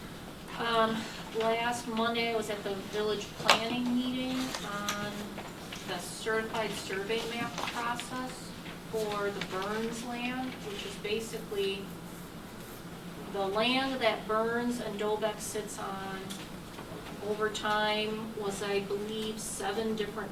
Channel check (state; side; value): identical; both; correlation 1.00